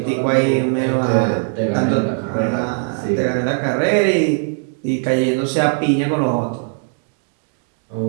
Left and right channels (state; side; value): silent; left; 57 dB below the other